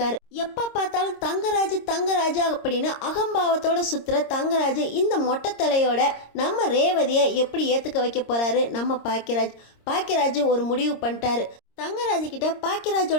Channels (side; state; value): right; late; 26 ms